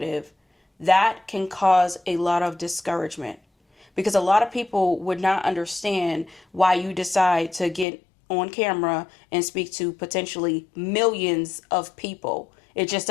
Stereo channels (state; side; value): drops out; right; at 7.9 s